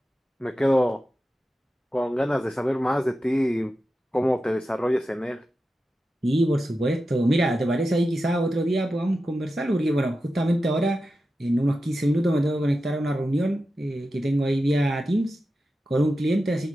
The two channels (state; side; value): normal; both; correlation 0.91